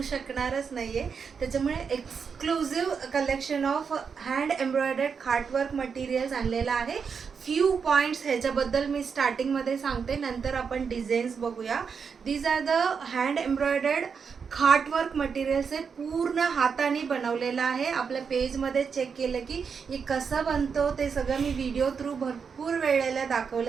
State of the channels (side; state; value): left; quieter; 6.1 dB